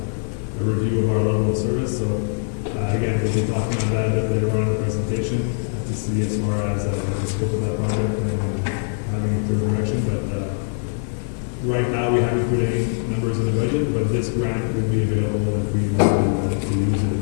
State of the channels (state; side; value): silent; right; digital silence